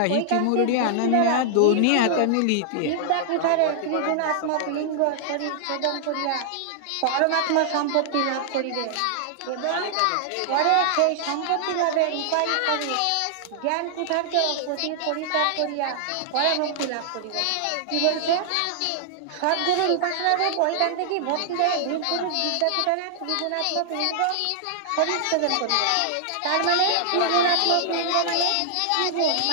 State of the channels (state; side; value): different; both; correlation -0.01